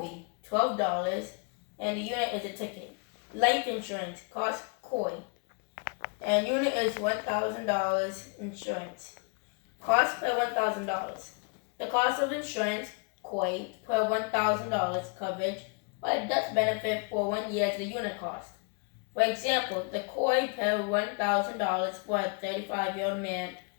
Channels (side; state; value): right; quieter; 34.3 dB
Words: be $12, and the unit is a ticket. Life insurance costs KOI, and unit is $1,000 insurance. Cost per $1,000. The cost of insurance KOI per $1,000 coverage, but death benefit for 1 year is the unit cost. For example, the KOI per $1,000 for a 35-year-old